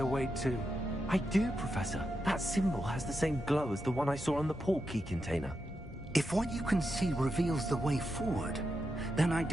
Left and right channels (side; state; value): both; normal; correlation 0.87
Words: way to... I do, Professor. That symbol has the same glow as the one I saw on the port key container. If what you can see reveals the way forward, then I